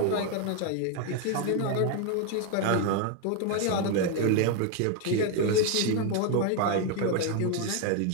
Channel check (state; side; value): different; both; correlation 0.01